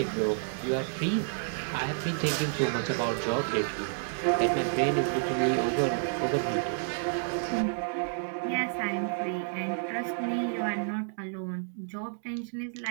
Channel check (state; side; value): silent; left; digital silence